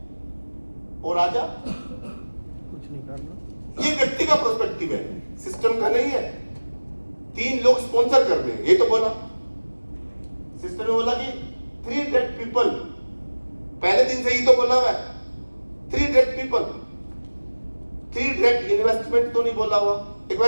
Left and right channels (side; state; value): both; inverted; correlation -1.00